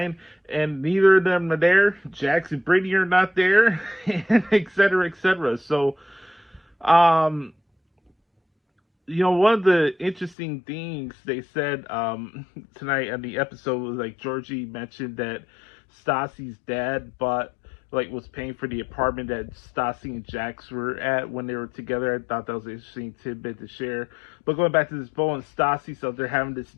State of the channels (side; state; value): right; drops out; at 10.4 s